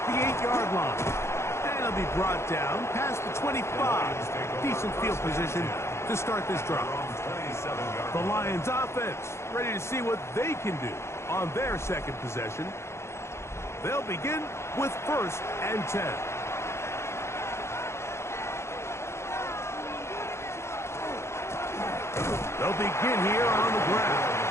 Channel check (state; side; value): late; right; 0.13 ms